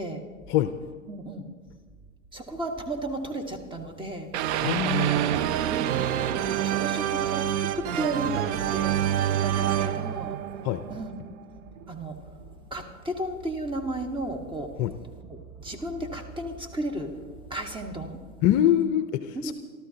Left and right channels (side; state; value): both; normal; correlation 0.09